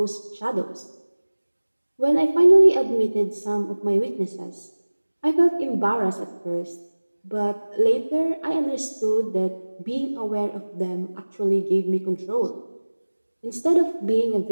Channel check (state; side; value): inverted; both; correlation -1.00